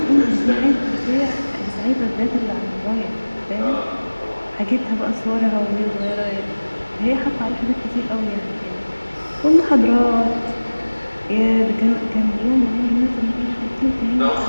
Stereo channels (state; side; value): inverted; both; correlation -1.00